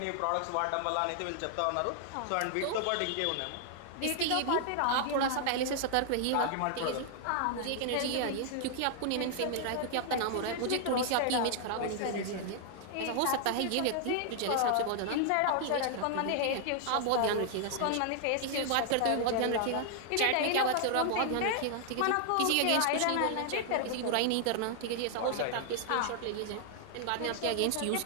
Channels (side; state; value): both; different; correlation 0.00